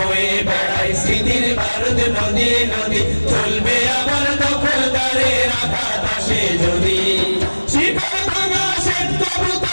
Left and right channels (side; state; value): both; inverted; correlation -1.00